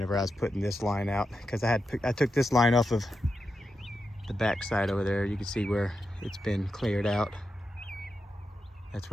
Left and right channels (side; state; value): both; normal; correlation 0.88